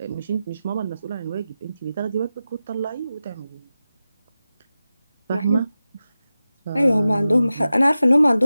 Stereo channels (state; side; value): inverted; both; correlation -0.94